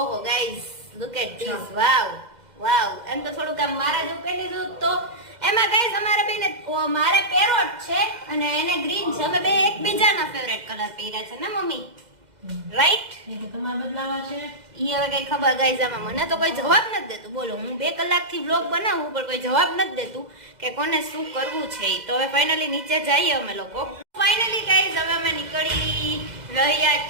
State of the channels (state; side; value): late; left; 2.1 ms